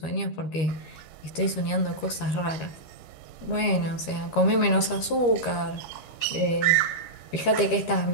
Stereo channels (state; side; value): late; right; 13 ms